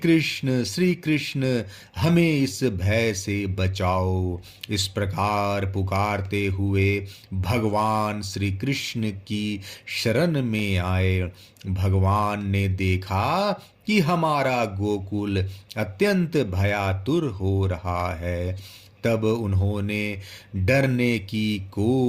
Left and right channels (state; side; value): identical; both; correlation 1.00